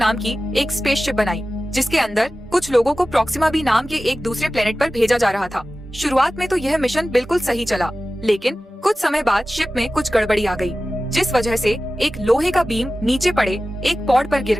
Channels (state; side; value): normal; both; correlation 0.95